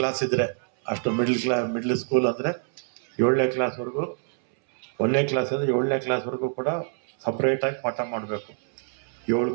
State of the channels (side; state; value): left; silent; 61 dB below the other